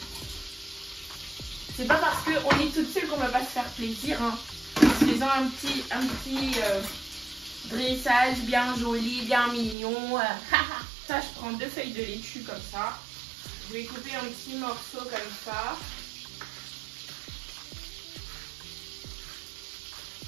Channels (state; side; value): drops out; left; at 9.8 s